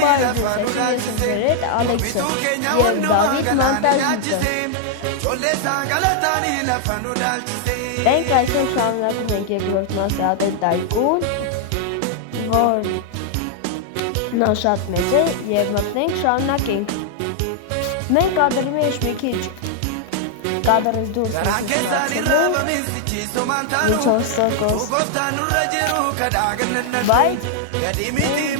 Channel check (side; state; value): both; different; correlation 0.00